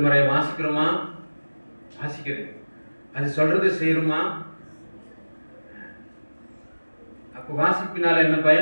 வாசிக்கிறோமா? வாசிக்கிறேன். அது சொல்றது செய்யணுமா? அப்ப வாசிப்பினால என்ன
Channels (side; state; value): both; inverted; correlation -1.00